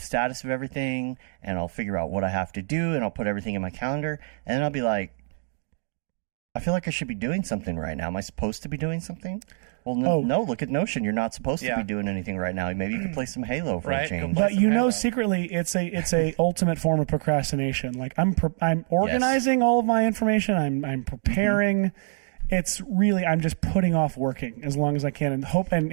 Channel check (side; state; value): left; silent; digital silence